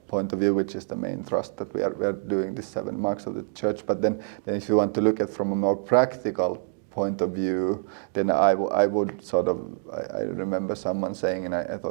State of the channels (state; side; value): silent; left; digital silence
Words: point of view, which is the main thrust that we are doing these 7 marks of the church. But then if you want to look at from a more practical point of view, then I would sort of, I remember someone saying, and I